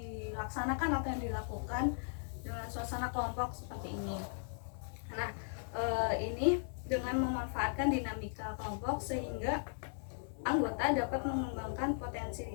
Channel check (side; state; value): right; silent; digital silence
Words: atau yang dilakukan dengan suasana kelompok seperti ini. Nah, ini dengan memanfaatkan dinamika kelompok sehingga anggota dapat mengembangkan potensi